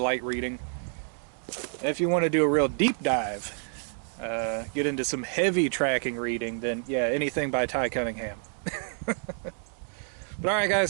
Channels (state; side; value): silent; left; 59 dB below the other